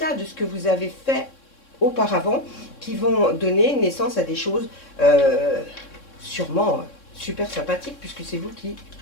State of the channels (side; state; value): right; late; 3.6 ms